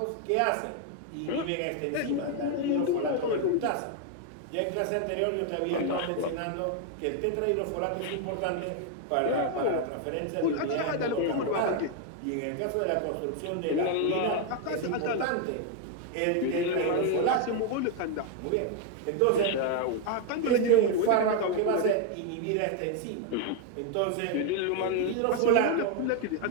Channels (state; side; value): different; both; correlation 0.00